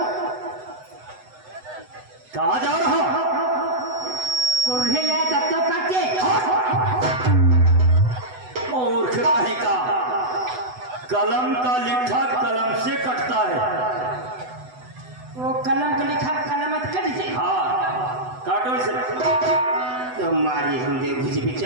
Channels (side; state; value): left; late; 8.0 ms